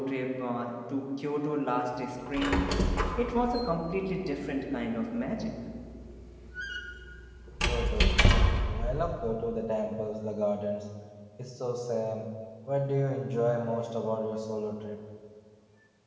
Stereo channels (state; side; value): identical; both; correlation 1.00